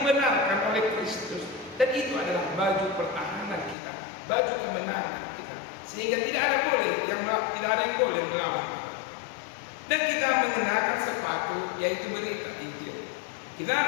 oleh Kristus. Dan itu adalah baju pertahanan kita, baju kemenangan kita. Sehingga tidak ada yang boleh melawan kita. Dan kita mengenakan sepatu, yaitu berita Injil.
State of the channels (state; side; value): drops out; right; at 3.8 s